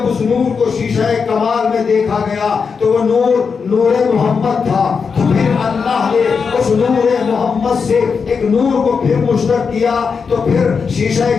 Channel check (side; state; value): right; quieter; 5.6 dB